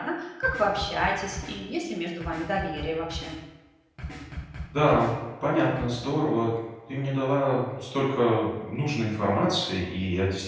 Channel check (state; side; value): identical; both; correlation 1.00